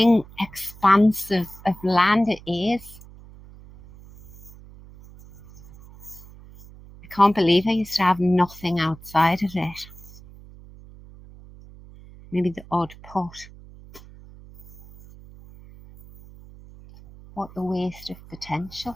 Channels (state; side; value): noise; right; hum, 20 dB below the sound